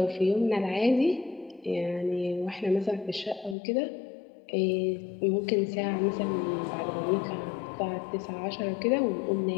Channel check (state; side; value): drops out; right; at 3.6 s